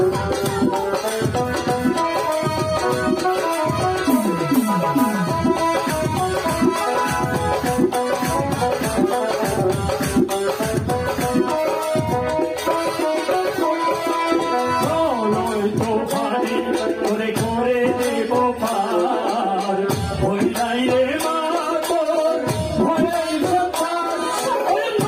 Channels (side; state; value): both; identical; correlation 1.00